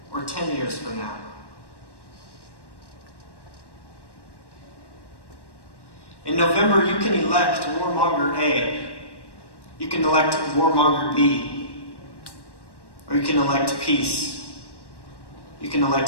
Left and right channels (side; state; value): right; late; 1.1 ms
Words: or 10 years from now. In November, you can elect warmonger A, you can elect warmonger B, or you can elect peace. You can